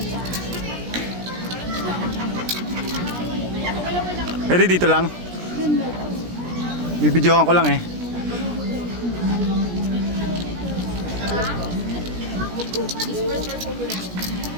Pwede dito lang? Bibidyohan ko lang eh.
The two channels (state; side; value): late; left; 17 ms